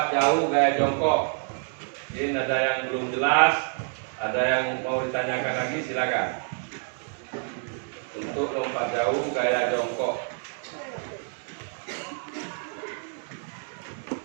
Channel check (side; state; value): left; silent; 55 dB below the other